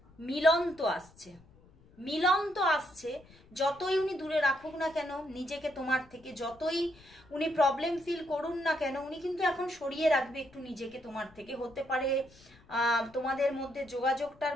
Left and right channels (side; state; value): left; noise; rumble, 26 dB below the sound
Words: মিলন তো আসছে। যতই উনি দূরে রাখুক না কেন নিজেকে তোমার থেকে, যতই উনি প্রবলেম ফিল করুন না কেন, উনি কিন্তু এখন সরিয়ে রাখবে একটু নিজেকে তোমার থেকে। হতে পারে তোমাদের মধ্যে যোগাযোগটার